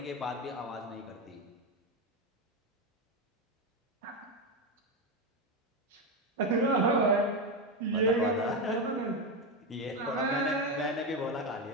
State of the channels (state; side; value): normal; both; correlation 0.12